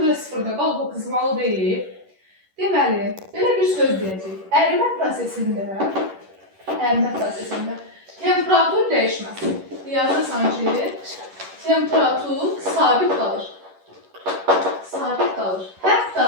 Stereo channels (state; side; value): late; left; 11 ms